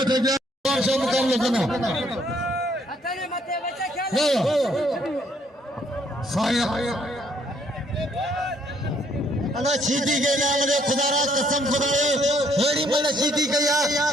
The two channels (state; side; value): normal; both; correlation 0.67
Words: थे और सब मुकाबला करना अतने मते बच्चा खेल साया अना सीधी के नाम रे खुदारा कसम खुदाए हेड़ी मन सीधी कया